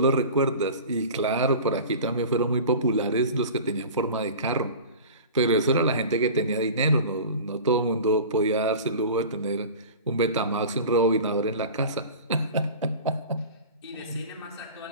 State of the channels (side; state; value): both; inverted; correlation -0.37